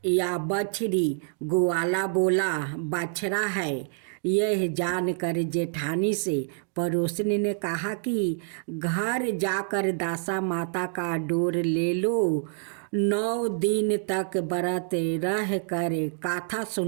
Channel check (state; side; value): silent; left; 60 dB below the other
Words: या बछड़ी? ग्वाला बोला, बछड़ा है। यह जानकर जेठानी से पड़ोसन ने कहा कि घर जाकर दासा माता का डोर ले लो। 9 दिन तक व्रत रह कर कथा